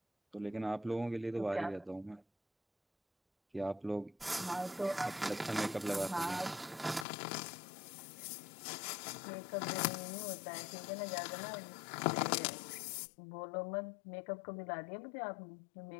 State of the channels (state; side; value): drops out; right; at 7.1 s